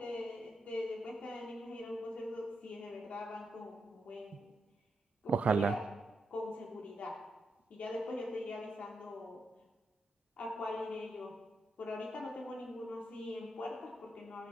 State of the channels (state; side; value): normal; both; correlation 0.83